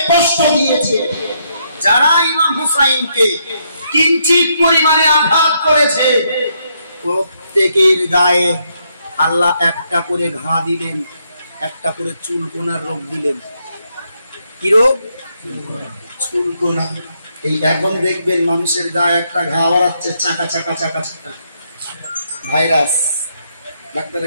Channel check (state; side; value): inverted; both; correlation -0.76